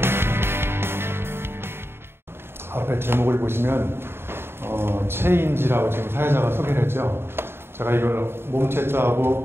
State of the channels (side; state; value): left; late; 0.11 ms